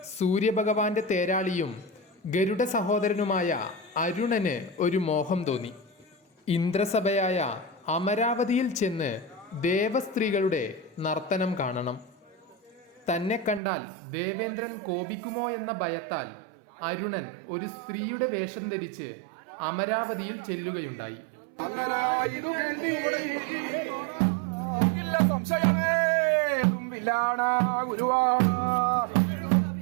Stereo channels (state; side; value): drops out; left; at 13.6 s